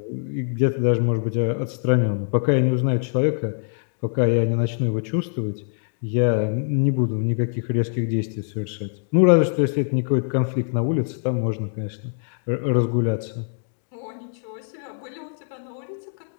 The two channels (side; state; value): right; silent; digital silence